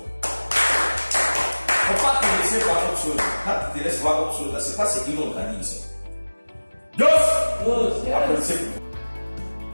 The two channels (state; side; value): inverted; both; correlation -1.00